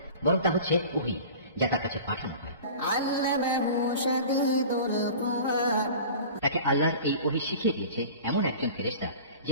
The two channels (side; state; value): both; inverted; correlation -0.39